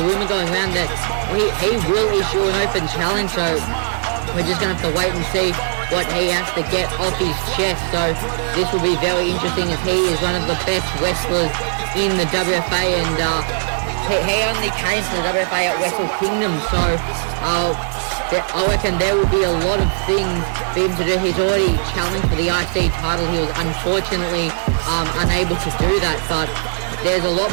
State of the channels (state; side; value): silent; left; digital silence